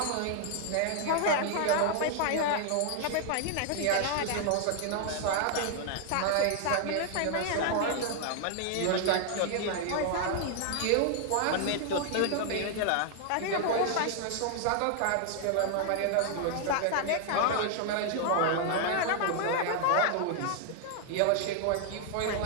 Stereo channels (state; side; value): different; both; correlation 0.00